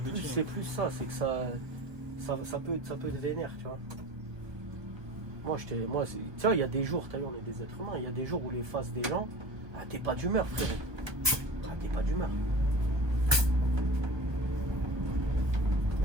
c'est plus ça, c'est que ça peut être vénère, tu vois. Tu vois, il y a des jours, t'as vu, on est des êtres humains, il y a des jours où les faces des gens, ah, t'es pas d'humeur, frérot. Ah, t'es pas d'humeur. Il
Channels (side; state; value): left; late; 1.2 ms